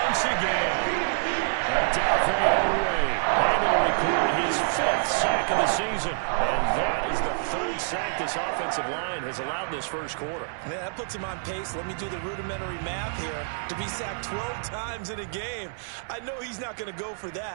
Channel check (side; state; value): left; silent; 60 dB below the other